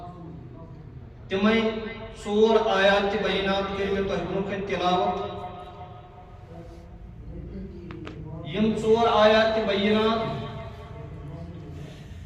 تمے ژور آیات بینات کر میں تہ برونٛہہ تلاوت۔ یم ژور آیات بینات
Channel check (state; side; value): identical; both; correlation 1.00